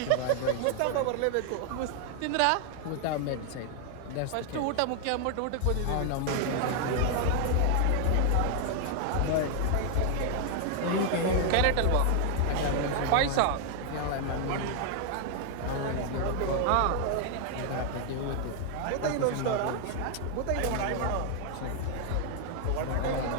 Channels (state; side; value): different; both; correlation 0.00